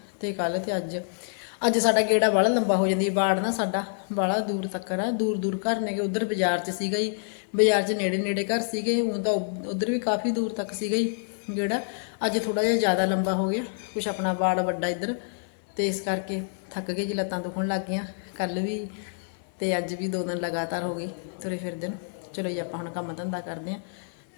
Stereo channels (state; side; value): silent; right; digital silence